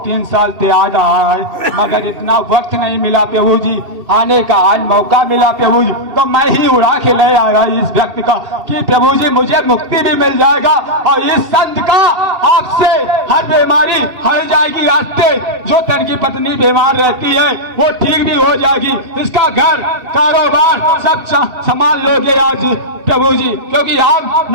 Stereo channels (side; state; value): left; late; 2.7 ms